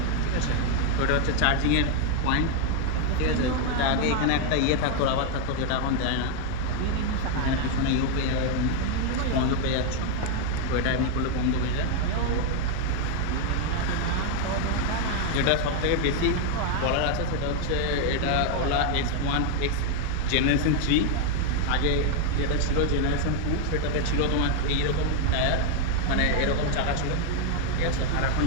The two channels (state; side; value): different; both; correlation 0.01